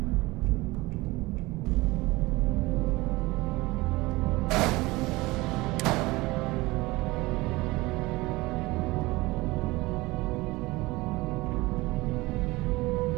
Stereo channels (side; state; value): left; quieter; 21.2 dB